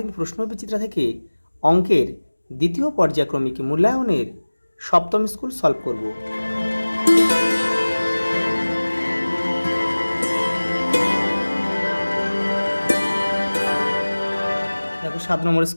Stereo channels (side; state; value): both; inverted; correlation -1.00